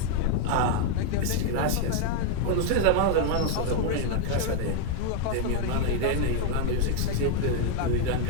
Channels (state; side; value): different; both; correlation 0.00